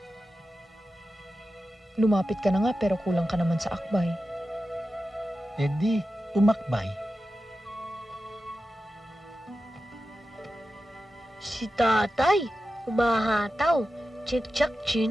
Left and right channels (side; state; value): both; normal; correlation 0.92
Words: Lumapit ka na nga pero kulang ka naman sa akbay. Eh di, umakbay. Si tatay, umahataw. Chik-chak